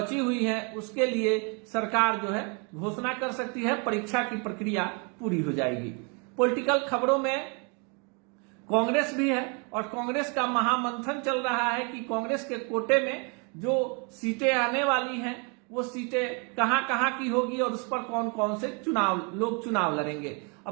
हुई हैं उसके लिए सरकार जो है घोषणा कर सकती है, परीक्षा की प्रक्रिया पूरी हो जाएगी। पॉलिटिकल खबरों में कांग्रेस भी है और कांग्रेस का महामंथन चल रहा है कि कांग्रेस के कोटे में जो सीटें आने वाली हैं वो सीटें कहां कहां की होगी और उस पर कौन कौन से लोग चुनाव लड़ेंगे।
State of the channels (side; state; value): left; quieter; 34.6 dB